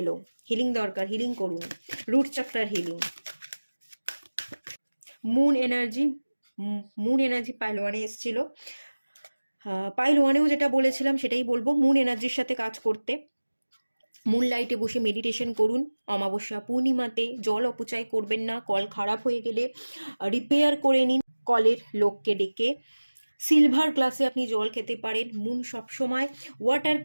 এলো, হিলিং দরকার, হিলিং করুন। রুট চক্রার healing, moon energy. Moon energy pile ওয়ানে এসেছিল, পাইল ওয়ানেও যেটা বলেছিলাম সেটাই বলবো, মুন এনার্জির সাথে কাজ করতে। মুন লাইটে বসে মেডিটেশন করুন। অমাবস্যা পূর্ণিমাতে জল অপচয় করবেন না। কল খারাপ হয়ে গেলে রিপেয়ার করে নিন, কলের লোককে ডেকে। সিলভার গ্লাসে আপনি জল খেতে পারেন। মুন সবসময়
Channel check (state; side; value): inverted; both; correlation -1.00